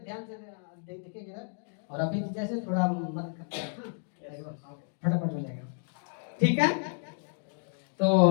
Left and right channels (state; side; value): silent; right; 57 dB below the other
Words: से देखेंगे ना। और अभी जैसे थोड़ा मदद करते हैं, फटाफट हो जाएगा। ठीक है, तो